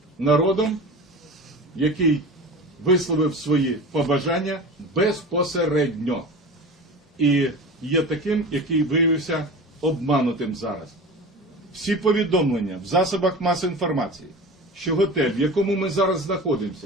народом, який висловив свої побажання безпосередньо. І є таким, який виявився обманутим зараз. Всі повідомлення в засобах масової інформації, що готель, в якому ми зараз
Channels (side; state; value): both; normal; correlation 0.33